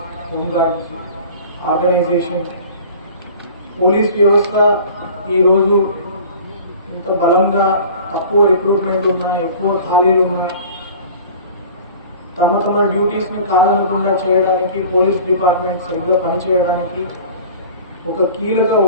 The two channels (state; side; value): inverted; both; correlation -0.43